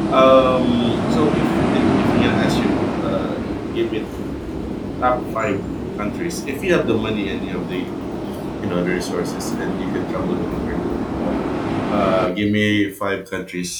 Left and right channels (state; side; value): identical; both; correlation 1.00